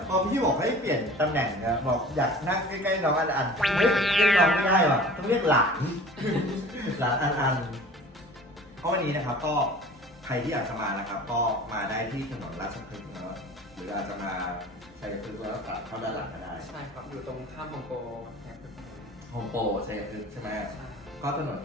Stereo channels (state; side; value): normal; both; correlation 0.43